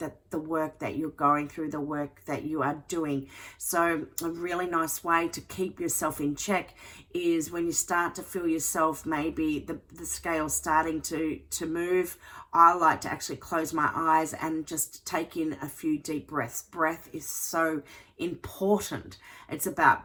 the work that you're going through, the work that you are doing. So a really nice way to keep yourself in check is when you start to feel yourself, maybe the scale starting to move. I like to actually close my eyes and just take in a few deep breaths. Breath is so important. It's about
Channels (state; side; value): identical; both; correlation 1.00